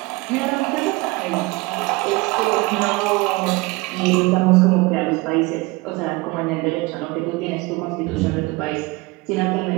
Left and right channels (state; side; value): quieter; left; 23.6 dB